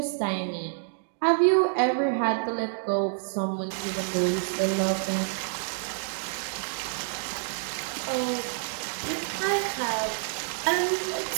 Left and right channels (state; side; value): silent; left; digital silence